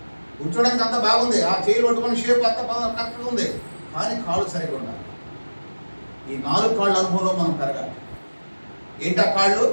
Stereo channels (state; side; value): inverted; both; correlation -1.00